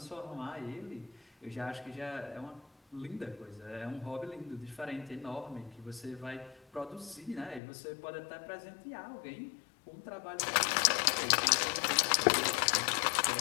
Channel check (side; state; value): right; drops out; at 7.6 s